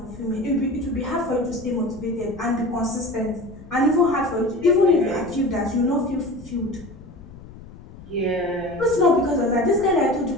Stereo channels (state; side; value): noise; left; rumble, 18 dB below the sound